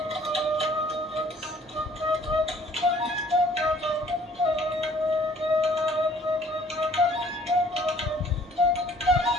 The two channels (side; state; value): both; normal; correlation 0.56